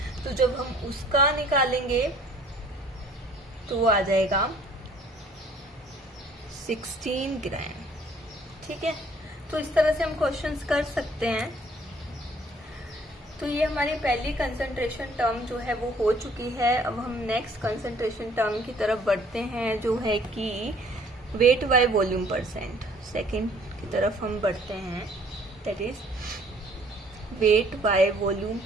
तो जब हम उसका निकालेंगे तो वो आ जाएगा 16 ग्राम, ठीक है। तो इस तरह से हम क्वेश्चंस कर सकते हैं। तो ये हमारी पहली कंसंट्रेशन टर्म जो है वो हो चुकी है। अब हम नेक्स्ट कंसंट्रेशन टर्म की तरफ बढ़ते हैं, जो है कि weight by volume percent. Second की तरफ हम बढ़ते हैं, that is weight by volume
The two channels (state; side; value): normal; both; correlation 0.57